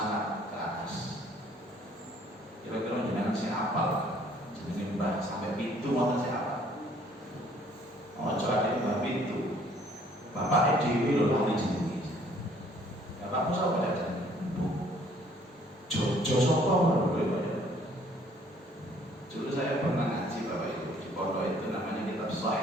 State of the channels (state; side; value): normal; both; correlation 0.60